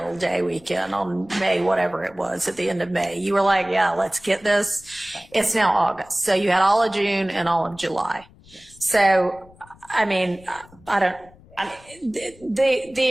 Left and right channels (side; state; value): left; noise; rumble, 26 dB below the sound